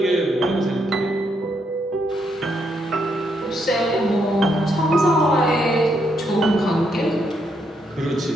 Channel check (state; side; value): normal; both; correlation 0.77